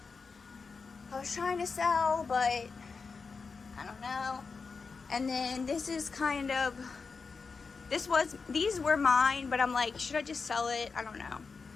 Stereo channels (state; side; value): quieter; right; 4.8 dB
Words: I was trying to sell, but I don't know. And then this is kind of, these were mine, but I'm like, should I just sell it? I don't know.